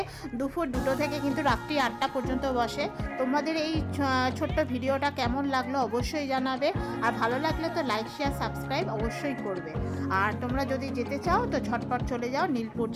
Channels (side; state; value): both; identical; correlation 1.00